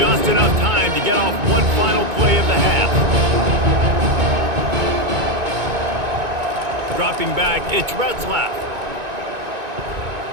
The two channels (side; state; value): left; late; 2.2 ms